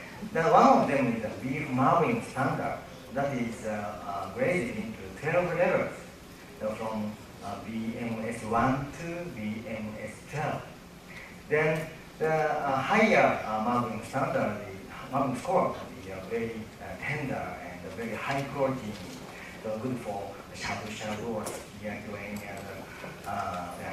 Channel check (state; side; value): identical; both; correlation 1.00